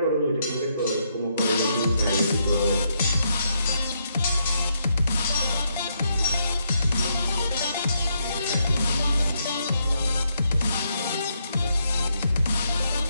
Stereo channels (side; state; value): both; inverted; correlation -0.77